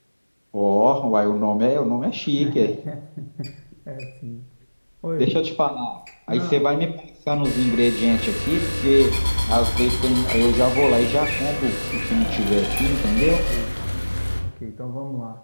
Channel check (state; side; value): inverted; both; correlation -1.00